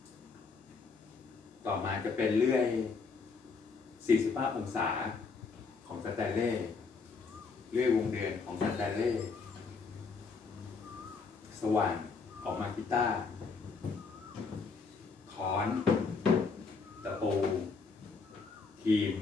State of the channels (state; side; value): quieter; right; 4.8 dB